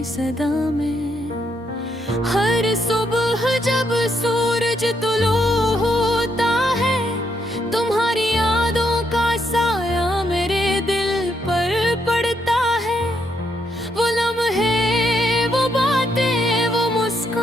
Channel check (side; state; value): both; normal; correlation 0.77